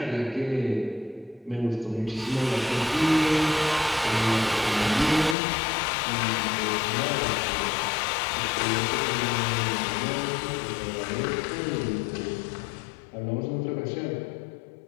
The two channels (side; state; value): right; drops out; at 5.4 s